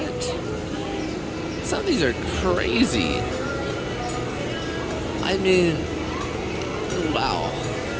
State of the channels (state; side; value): identical; both; correlation 1.00